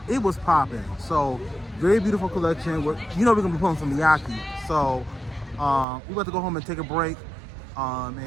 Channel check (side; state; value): left; drops out; at 5.9 s